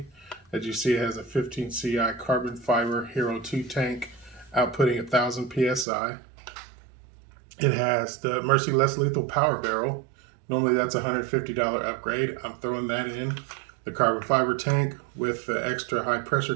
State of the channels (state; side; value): drops out; left; at 5.9 s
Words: As you see, it has a 15 CI carbon fiber Hero 2 tank outputting 1,000 PSI. It has the Mercy Less Lethal Power Barrel. Normally that's a $150 upgrade. I'm throwing that in. The carbon fiber tank with the extra high pressure